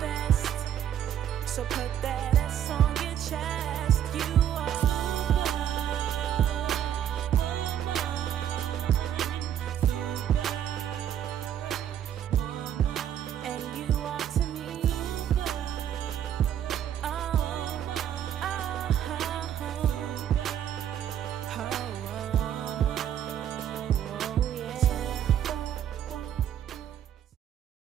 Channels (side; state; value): left; quieter; 10.1 dB